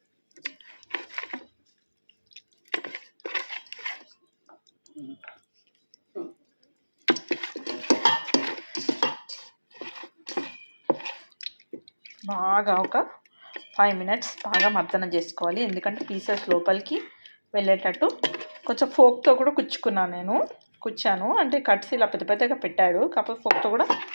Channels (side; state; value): both; inverted; correlation -1.00